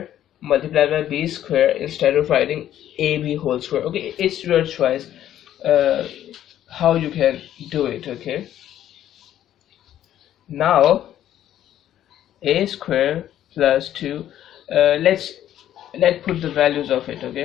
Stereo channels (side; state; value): right; quieter; 11.7 dB